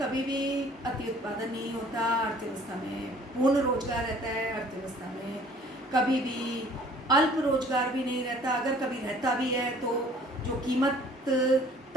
भी अति उत्पादन नहीं होता, अर्थव्यवस्था में पूर्ण रोजगार रहता है, अर्थव्यवस्था में कभी भी अल्प रोजगार भी नहीं रहता, अगर कभी रहता भी है तो जो कीमत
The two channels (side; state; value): both; normal; correlation 0.54